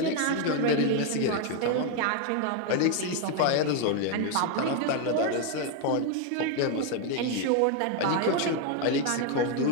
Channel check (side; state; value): both; different; correlation 0.01